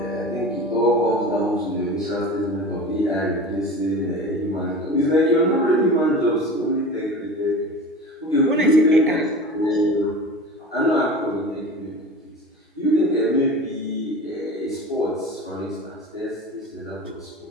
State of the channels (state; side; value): normal; both; correlation 0.34